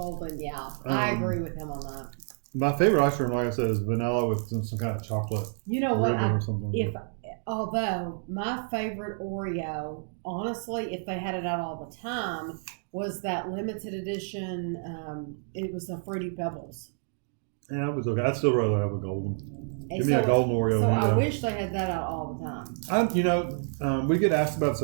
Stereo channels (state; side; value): silent; left; 59 dB below the other